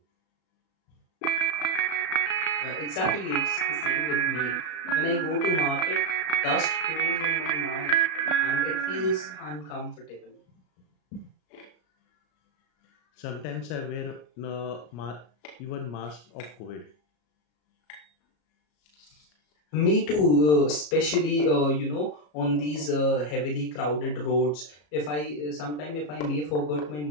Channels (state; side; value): late; right; 33 ms